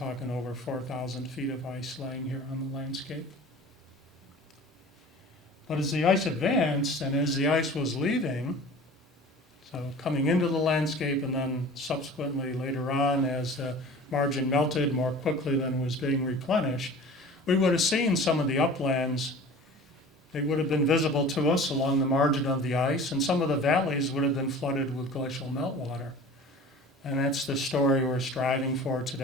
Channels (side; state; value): both; normal; correlation 0.41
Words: over 4,000 feet of ice laying here on the landscape. But as the ice advanced and as the ice was leaving, so coming into the landscape and then subsequently later on as the margin melted more quickly than was being replenished, we would have seen some of the uplands. They would have been visible to us along the margin of the ice, and some of the valleys would have been flooded with glacial meltwater. And that's the story we're striving for